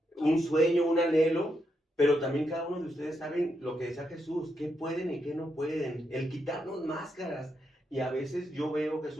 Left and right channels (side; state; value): both; normal; correlation 0.82